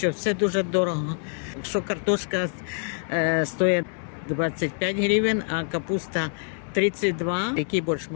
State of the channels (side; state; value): right; silent; 61 dB below the other